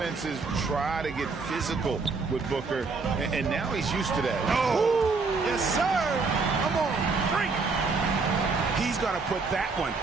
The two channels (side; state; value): left; quieter; 4.3 dB